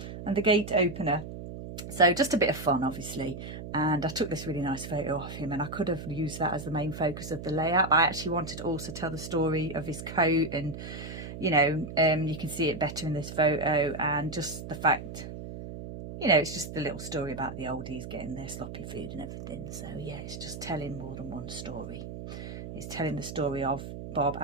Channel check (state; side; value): noise; right; hum, 9 dB below the sound